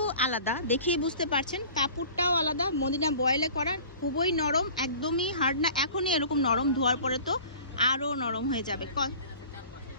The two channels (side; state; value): both; inverted; correlation -0.44